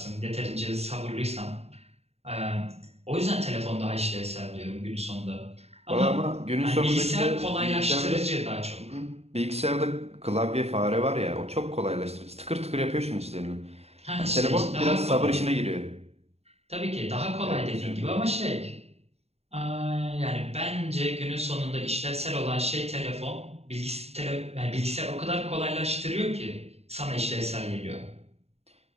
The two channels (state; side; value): late; left; 0.30 ms